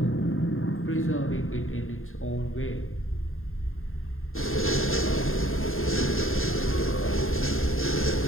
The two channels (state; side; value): late; right; 0.60 ms